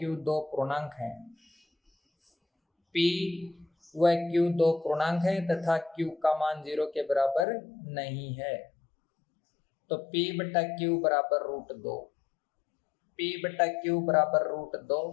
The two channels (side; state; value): right; drops out; at 7.5 s